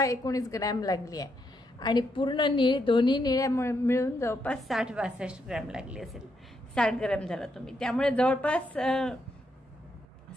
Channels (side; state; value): both; normal; correlation 0.78